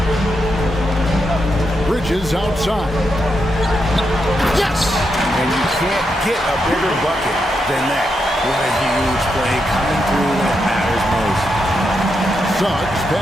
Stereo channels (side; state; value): both; normal; correlation 0.83